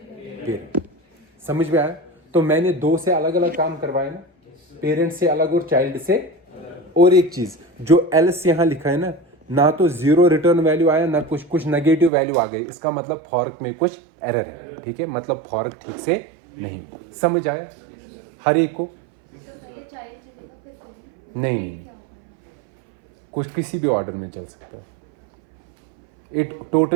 समझ में आया। तो मैंने 2 से अलग अलग काम करवाए ना, पेरेंट से अलग और चाइल्ड से। और एक चीज जो एल्स यहां लिखा है ना तो 0 रिटर्न वैल्यू आया ना कुछ नेगेटिव वैल्यू आ गई, इसका मतलब फॉर्क में कुछ एरर है, ठीक है। मतलब फॉर्क ठीक से नहीं। समझ आया हर एक को, नहीं कुछ किसी भी ऑर्डर में चल सकता है। It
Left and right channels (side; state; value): left; drops out; at 12.1 s